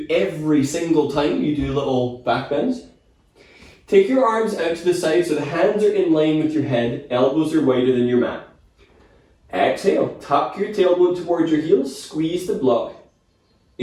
every single time you do little back bends. Take your arms out to the side so the hands are in line with your head, elbows are wider than your mat. Exhale, tuck your tailbone towards your heels, squeeze the block.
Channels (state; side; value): identical; both; correlation 1.00